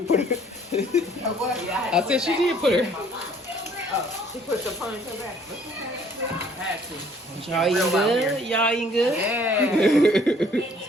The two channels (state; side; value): normal; both; correlation 0.59